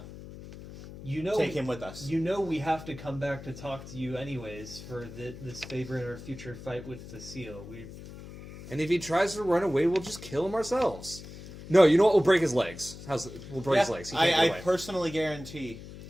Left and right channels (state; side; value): noise; left; hum, 14 dB below the sound